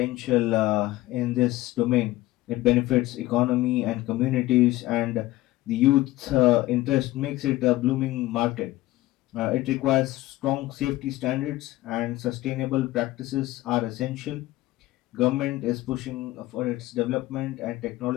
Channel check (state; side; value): quieter; right; 17.4 dB